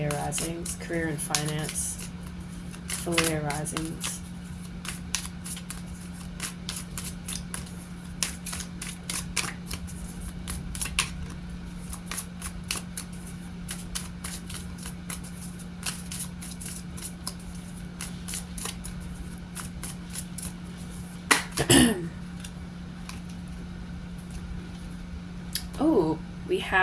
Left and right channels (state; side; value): identical; both; correlation 1.00